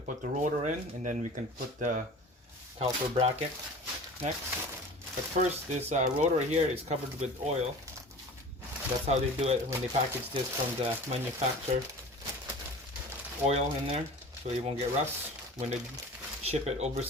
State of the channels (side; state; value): both; normal; correlation 0.39